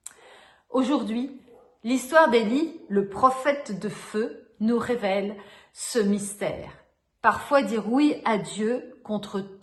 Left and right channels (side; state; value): both; identical; correlation 1.00